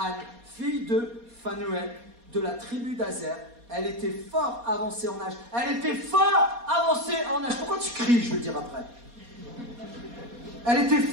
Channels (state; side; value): late; left; 4.2 ms